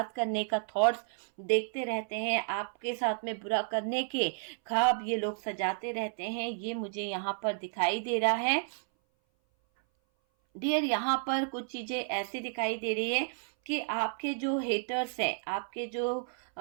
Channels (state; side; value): silent; left; 57 dB below the other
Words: करने का थॉट्स देखते रहते हैं, आपके साथ में बुरा करने के ख्वाब ये लोग सजाते रहते हैं। ये मुझे यहाँ पर दिखाई दे रहा है डियर। यहाँ पर कुछ चीजें ऐसी दिखाई दे रही है कि आपके जो हेटर्स हैं, आपके जो